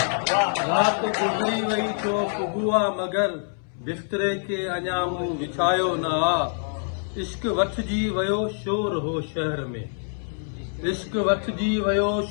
रात गुज़री वई थियो सुबुह आहे मगर बिस्तरे खे अञा मूं विछायो ना इश्क वठजी वियो शोर हो शहर में इश्क वठजी वियो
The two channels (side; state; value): right; silent; 62 dB below the other